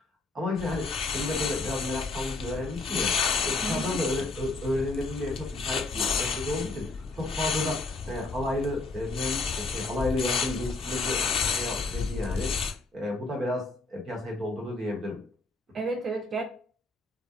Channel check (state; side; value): quieter; right; 3.1 dB